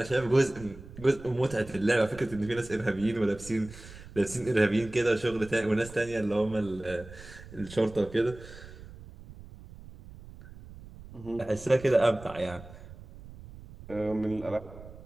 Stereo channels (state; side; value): noise; right; rumble, 17 dB below the sound